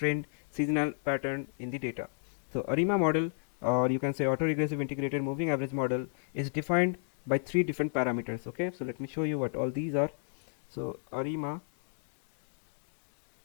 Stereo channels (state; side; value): silent; right; digital silence